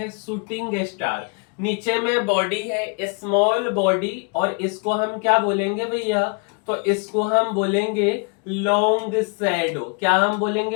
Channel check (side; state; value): right; quieter; 34.5 dB